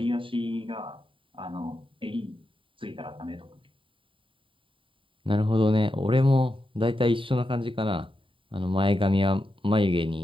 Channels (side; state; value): left; late; 0.25 ms